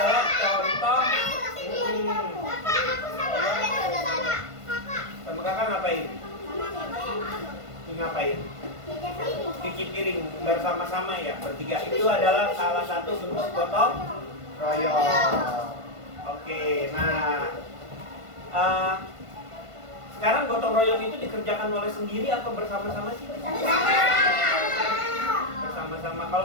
contoh. Sama kakak ngapain? Ngapain? Cuci piring bersama-sama ya, bertiga. Itu adalah salah satu bentuk gotong royong. Oke, nah Sekarang gotong royong itu dikerjakan oleh sendiri atau bersama-sama sih? Bersama-sama. Kalau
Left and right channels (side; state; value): left; late; 1.5 ms